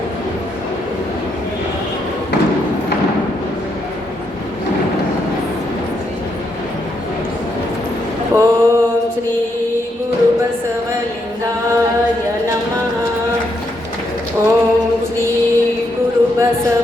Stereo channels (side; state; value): both; normal; correlation 0.78